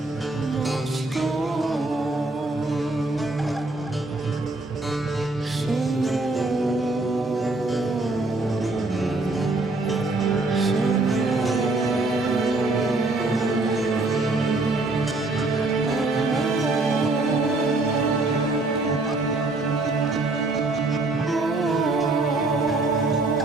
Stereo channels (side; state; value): left; quieter; 3.1 dB